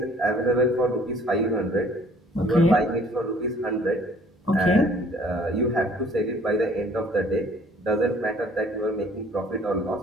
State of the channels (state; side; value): normal; both; correlation 0.56